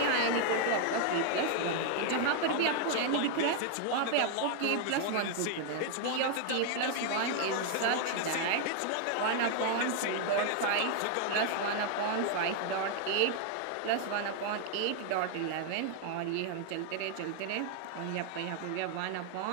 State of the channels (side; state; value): both; different; correlation 0.00